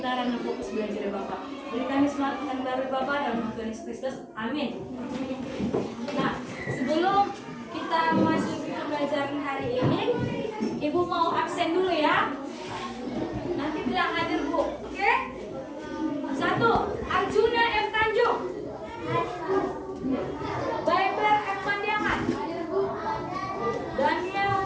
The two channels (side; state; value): both; identical; correlation 1.00